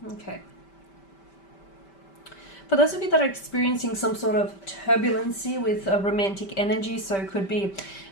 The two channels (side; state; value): right; late; 5.1 ms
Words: Okay. For those of you that are experiencing some sort of turbulency with a romantic energy, so it could be